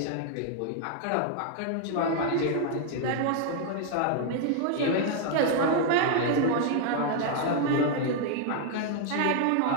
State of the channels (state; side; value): different; both; correlation 0.00